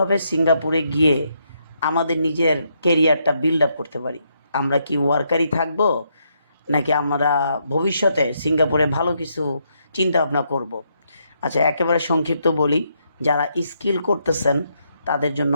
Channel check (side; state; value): both; inverted; correlation -0.76